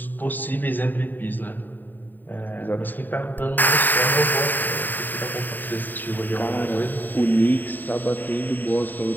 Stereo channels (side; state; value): right; late; 0.089 ms